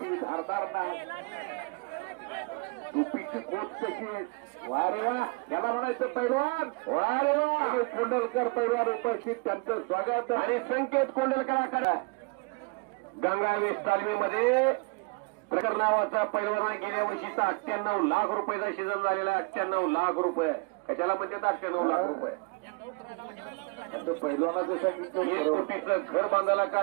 धारदार नाही. टोपीची कोट कशी. वा रे वा. याला म्हणायचं पैलवान. वा रे वा. कोंडलकर पैलवान उपस्थित त्यांचं स्वागत. आणि संकेत कोंडलकरांकडे गंगावेस तालमीमध्ये प्रकार नावाचा पैलवाना गेल्या वर्षीचा 98 लाख रुपयाचा सीझन झालेला आहे. 98 लाख रुपये. कशाला म्हणतात 98 लाख रुपये. पैलवानाचं सांगितलं 1 कोटीचं घर बांधायला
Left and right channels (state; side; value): quieter; left; 30.3 dB